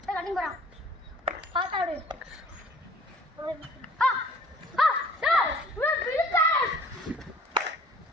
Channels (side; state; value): both; normal; correlation 0.52